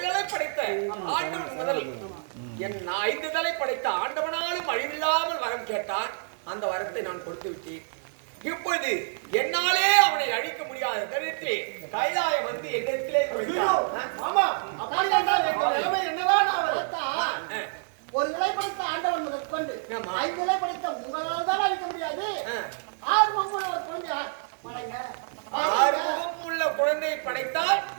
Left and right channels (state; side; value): silent; left; 60 dB below the other